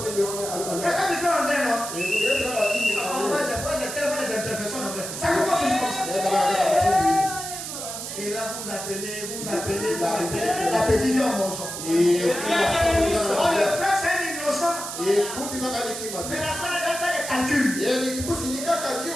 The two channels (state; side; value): noise; right; hiss, 7 dB below the sound